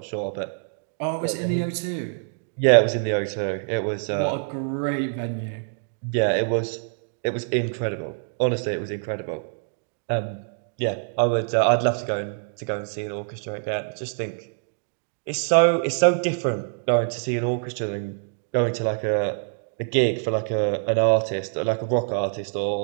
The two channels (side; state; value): left; silent; digital silence